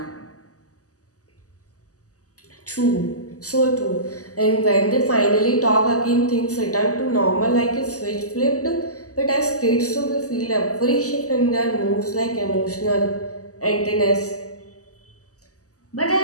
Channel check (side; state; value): right; late; 0.66 ms